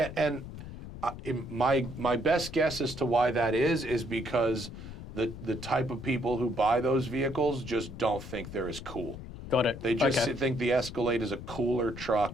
My best guess as to why that is because the type of people who buy those vehicles just don't think they're as cool. Got it. They just Okay. think the Escalade is a cooler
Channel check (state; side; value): noise; left; rumble, 11 dB below the sound